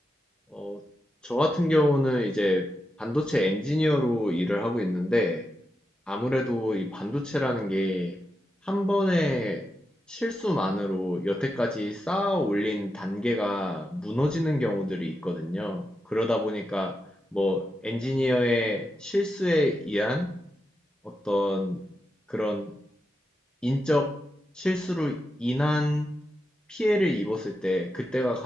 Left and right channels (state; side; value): normal; both; correlation 0.87